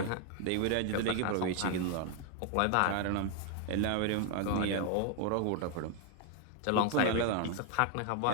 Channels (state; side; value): different; both; correlation 0.00